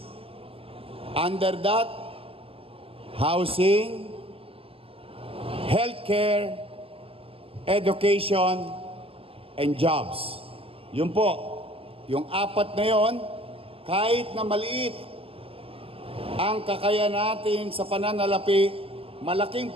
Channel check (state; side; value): late; left; 0.27 ms